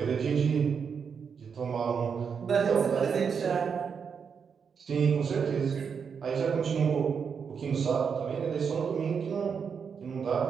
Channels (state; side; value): quieter; left; 6.4 dB